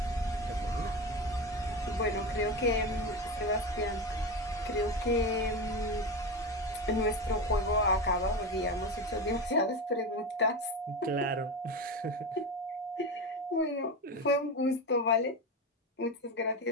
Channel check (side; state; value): both; normal; correlation 0.20